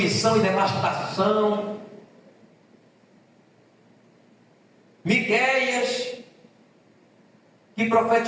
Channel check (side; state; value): both; identical; correlation 1.00